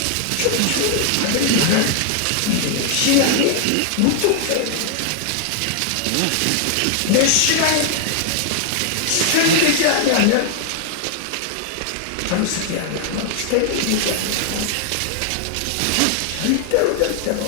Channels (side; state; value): both; different; correlation 0.00